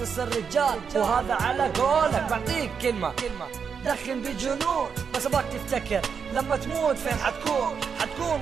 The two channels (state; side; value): quieter; left; 6.4 dB